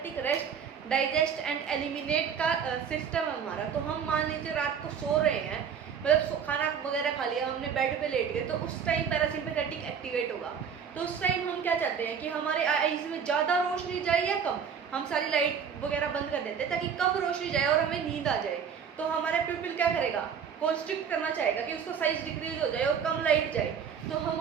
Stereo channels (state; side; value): quieter; left; 7.2 dB